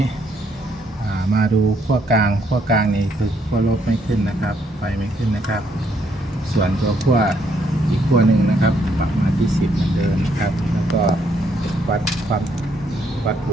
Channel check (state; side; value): normal; both; correlation 0.71